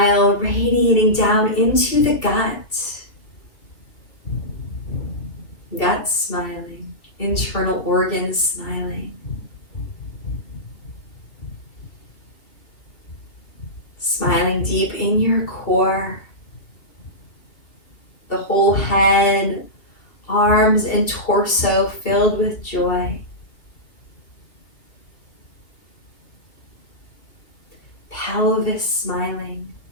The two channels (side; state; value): right; late; 2.7 ms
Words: radiating down into the gut, gut smiling, internal organs smiling. Smiling deep in your core, the whole head, arms and torso filled with joy. Pelvis smiling.